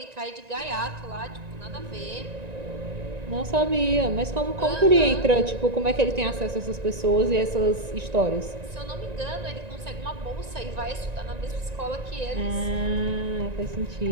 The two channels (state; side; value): late; left; 1.9 ms